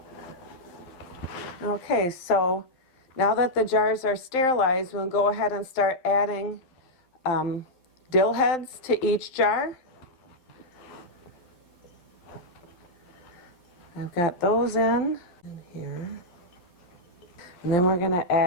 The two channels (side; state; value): right; late; 12 ms